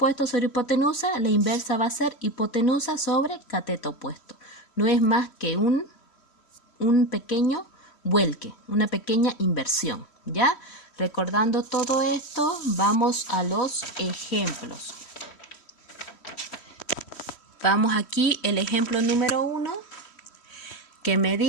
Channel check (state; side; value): late; right; 3.1 ms